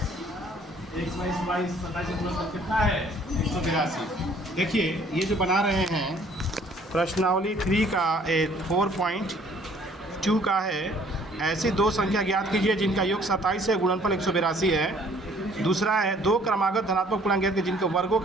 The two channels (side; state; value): both; normal; correlation 0.58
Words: एक्स माइनस 27 का गुणनफल कितना है 182। देखिए ये जो बना रहे हैं प्रश्नावली 3 का 4.2 का है। ऐसी दो संख्या ज्ञात कीजिए जिनका योग 27 है, गुणनफल 182 है। दूसरा है दो क्रमागत धनात्मक पूर्णांक ज्ञात कीजिए जिनके वर्गों